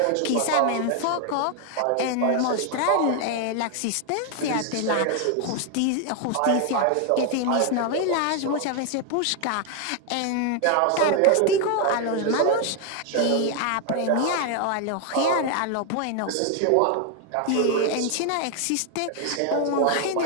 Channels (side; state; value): both; different; correlation 0.01